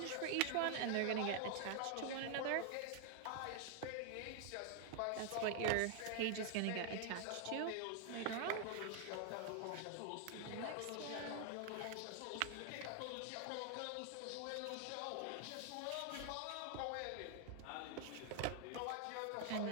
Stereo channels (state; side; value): different; both; correlation 0.00